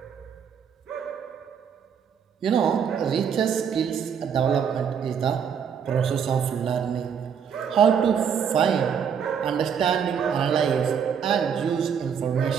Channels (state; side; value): quieter; left; 7.5 dB